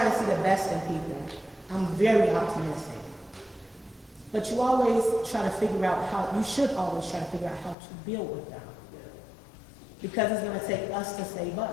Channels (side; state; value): right; drops out; at 7.8 s